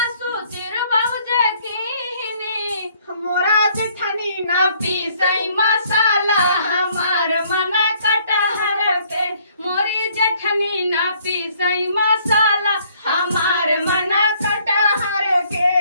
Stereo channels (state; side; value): inverted; both; correlation -0.63